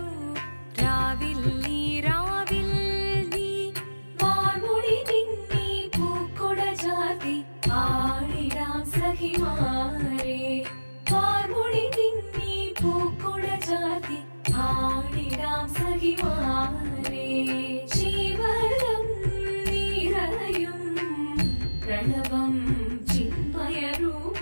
രാവിൽ നീ വാർമുടി നിന്നി പൂക്കുട ചാർത്തി ആടിടാം സഖിമാരേ വാർമുടി നിന്നി പൂക്കുട ചാർത്തി ആടിടാം സഖിമാരേ ശിവനം നിറയും പ്രണവം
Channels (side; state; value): both; inverted; correlation -1.00